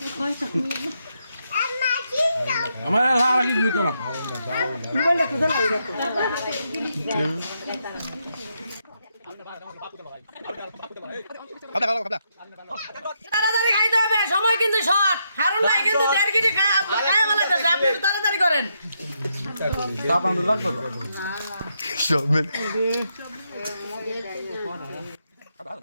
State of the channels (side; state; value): both; inverted; correlation -0.80